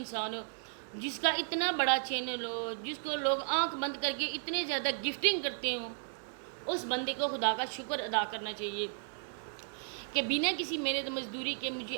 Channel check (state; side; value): silent; left; digital silence